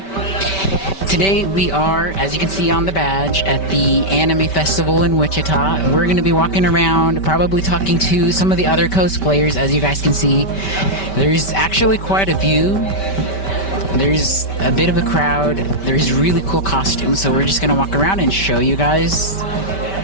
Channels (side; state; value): right; late; 5.2 ms